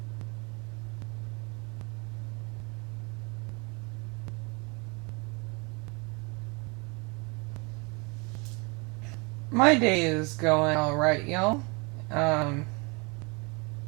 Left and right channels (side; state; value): left; quieter; 30.4 dB